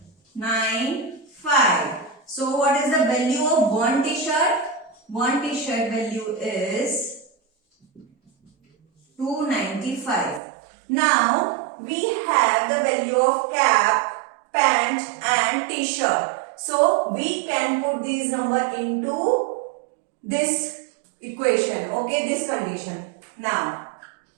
So what is the value of 1 t-shirt? 1 t-shirt value is 295. Now we have the value of cap, pant and t-shirt. So we can put these number into this equation. Okay, this condition. Now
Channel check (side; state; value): left; drops out; at 10.4 s